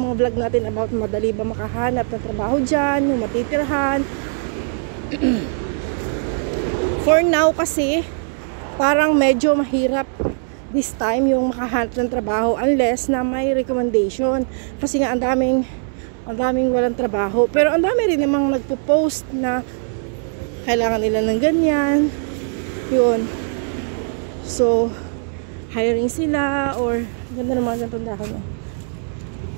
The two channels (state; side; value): silent; left; digital silence